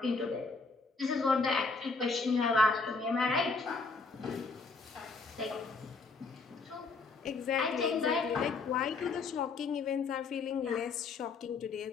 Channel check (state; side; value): quieter; right; 4.1 dB